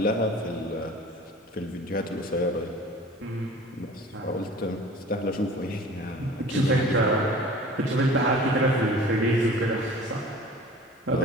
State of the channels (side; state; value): both; normal; correlation 0.43